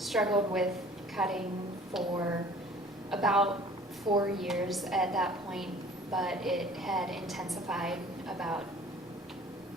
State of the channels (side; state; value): both; normal; correlation 0.50